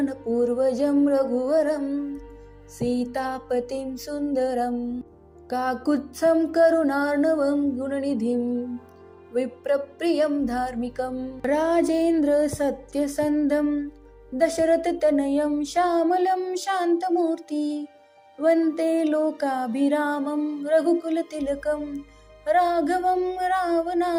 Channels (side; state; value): both; identical; correlation 1.00